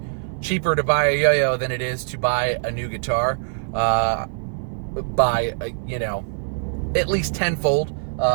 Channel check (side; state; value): left; silent; 60 dB below the other